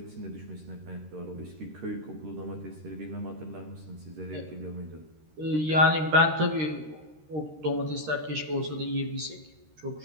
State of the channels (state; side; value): late; left; 13 ms